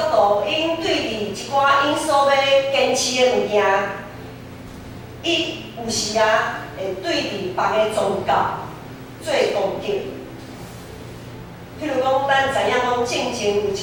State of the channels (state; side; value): identical; both; correlation 1.00